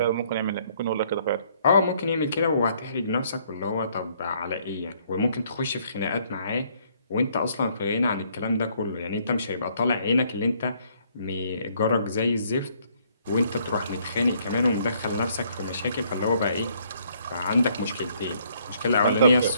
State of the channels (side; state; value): both; inverted; correlation -0.66